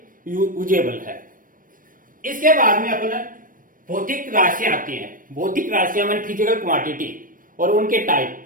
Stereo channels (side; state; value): left; late; 0.40 ms